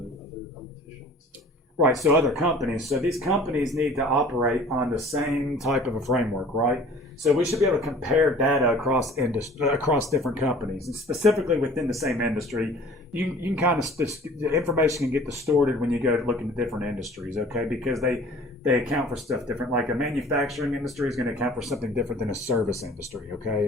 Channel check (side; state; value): both; normal; correlation 0.48